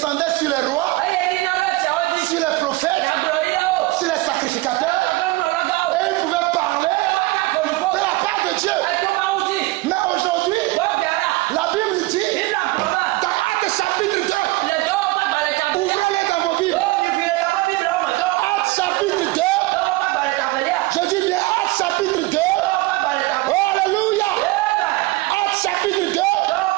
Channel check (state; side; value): quieter; left; 20.8 dB